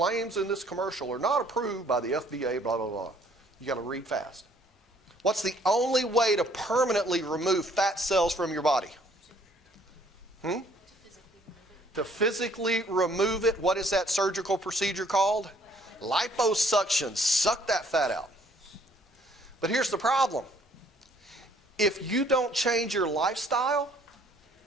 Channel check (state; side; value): normal; both; correlation 0.61